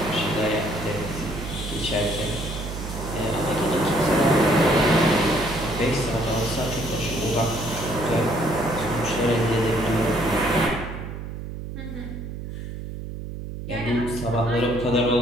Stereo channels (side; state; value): right; noise; hum, 8 dB below the sound